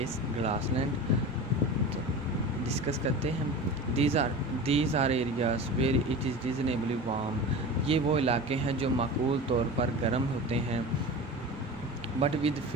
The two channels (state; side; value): noise; right; rumble, 19 dB below the sound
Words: grassland. Discuss کرتے ہیں. These are areas where it is reasonably warm. یہ وہ علاقے ہیں جو معقول طور پر گرم ہوتے ہیں. But with